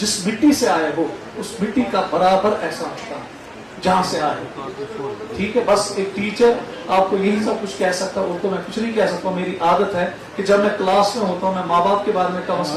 मिट्टी से आए हो उस मिट्टी का बराबर एहसास होता है जहां से आए। ठीक है, बस एक टीचर आपको यही सब कुछ कह सकता, और तो मैं कुछ नहीं कह सकता। मेरी आदत है कि जब मैं क्लास में होता हूँ, मैं माँ बाप के बारे में कम से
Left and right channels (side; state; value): both; identical; correlation 1.00